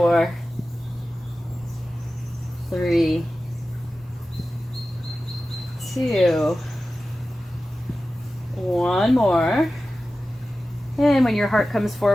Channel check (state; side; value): normal; both; correlation 0.95